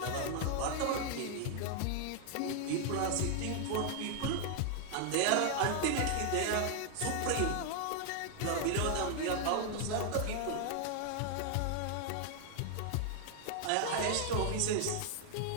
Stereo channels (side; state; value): both; different; correlation 0.00